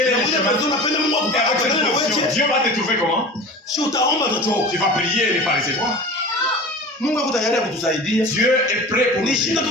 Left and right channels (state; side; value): normal; both; correlation 0.36